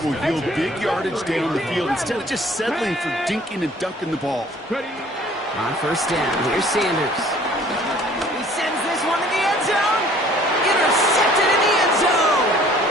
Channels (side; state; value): both; normal; correlation 0.54